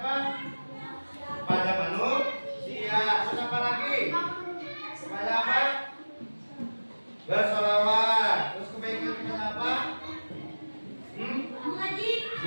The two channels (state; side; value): inverted; both; correlation -1.00